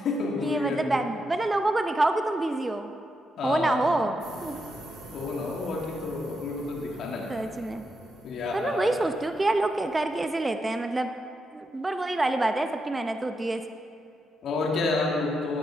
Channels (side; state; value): both; normal; correlation 0.83